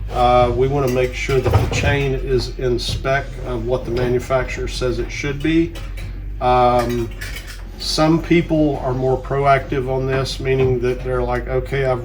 we want to make sure that the chain is in spec of what the manufacturer says it should be. Some people are more proactive on this, meaning that they're like, okay, I've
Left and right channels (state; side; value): identical; both; correlation 1.00